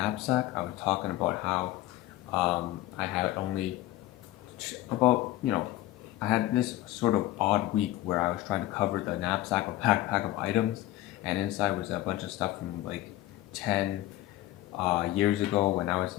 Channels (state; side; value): quieter; right; 15.5 dB